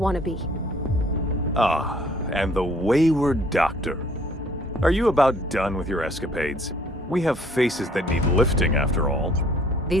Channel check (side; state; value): both; normal; correlation 0.58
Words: to be. Ah, and the wayward doctor. Are you about done with your escapades? We have faces that need lifting, after all.